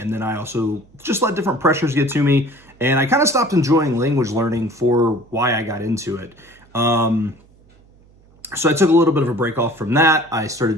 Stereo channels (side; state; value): right; noise; hum, 29 dB below the sound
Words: then I also just let different pressures get to me. And I kind of stopped enjoying language learning for why I got into it. So I took a little bit of a break off from that. I